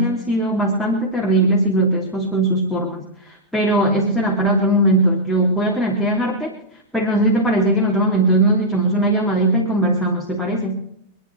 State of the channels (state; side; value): normal; both; correlation -0.08